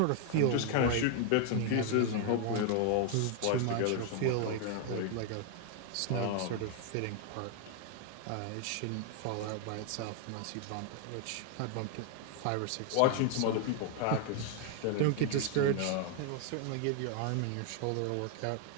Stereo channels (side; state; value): both; different; correlation 0.00